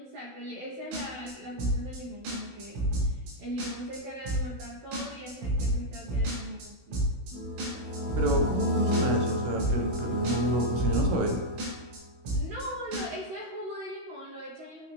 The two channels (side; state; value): left; late; 16 ms